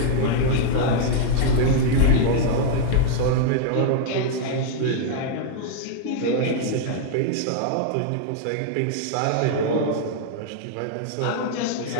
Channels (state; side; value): different; both; correlation -0.01